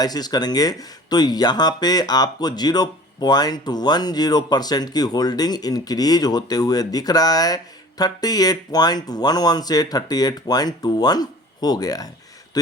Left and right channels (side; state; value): both; normal; correlation 0.45